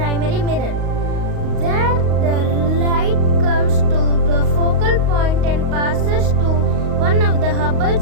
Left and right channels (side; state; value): left; late; 38 ms